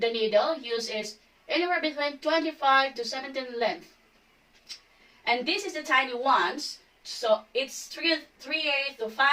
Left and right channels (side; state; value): both; identical; correlation 1.00